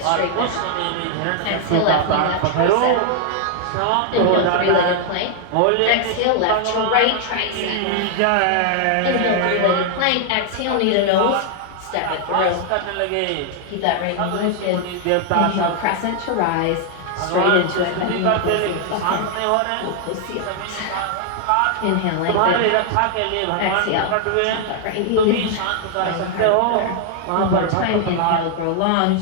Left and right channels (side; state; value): both; different; correlation 0.00